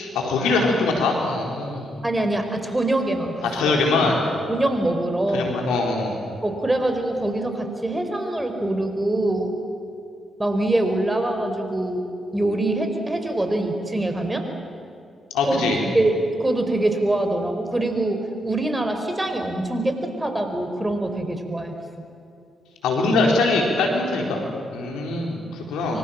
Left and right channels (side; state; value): both; normal; correlation 0.79